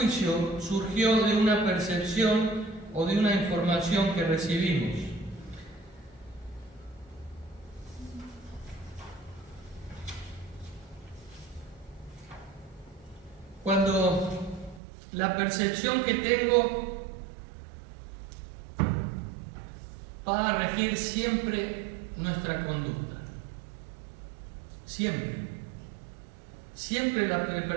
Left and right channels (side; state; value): left; drops out; at 14.8 s